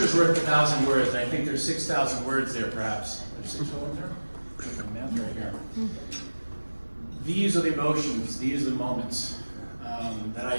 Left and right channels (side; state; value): both; inverted; correlation -1.00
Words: worth 1,000 words, and I think there's 6,000 words there, perhaps. There's 6,000 there? Math right here. These are the emotions, these are the moments that I